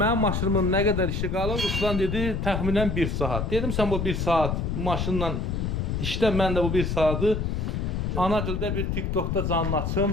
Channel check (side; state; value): left; noise; rumble, 1 dB below the sound